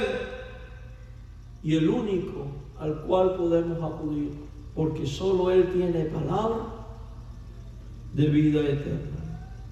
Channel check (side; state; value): both; identical; correlation 1.00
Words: y el único al cual podemos acudir, porque solo Él tiene palabra de vida eterna.